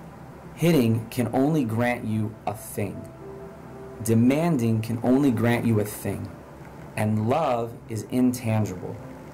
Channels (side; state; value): both; identical; correlation 1.00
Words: Hitting can only grant you a thing. Demanding can only grant you a thing. And love is intangible.